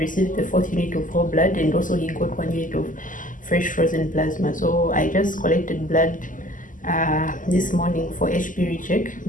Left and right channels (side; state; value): right; late; 0.38 ms